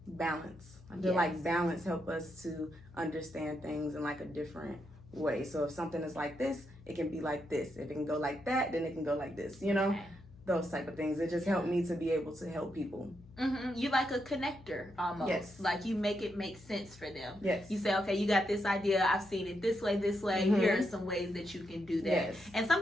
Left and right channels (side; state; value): left; noise; hum, 21 dB below the sound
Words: balance. I feel like balance help us to understand things in like a different way. So if something is like this, it can be like this. If it can go like that, then it can go like this, you know? Those type of things. It just helped me to be able to help people. You like a connector almost. Yes. Like you make it make sense for them. Yes. You say, okay, you got this idea. I've seen it this way. Here are some ways that you can do that. Yes. And